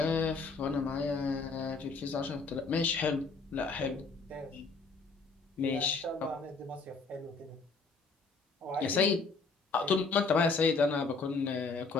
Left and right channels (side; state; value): right; quieter; 4.3 dB